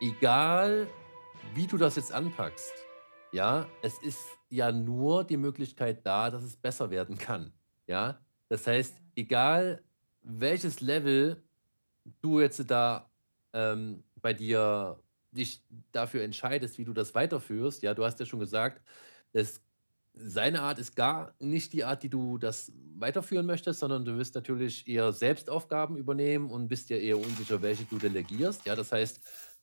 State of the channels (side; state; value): both; inverted; correlation -1.00